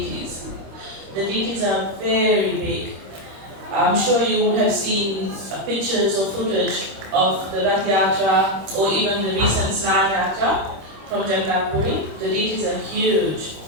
The deities are very big. I'm sure you would have seen pictures or footage of the Rath Yatra or even the recent Snana Yatra from Jagannath Puri. The deities are huge.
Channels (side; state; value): left; late; 26 ms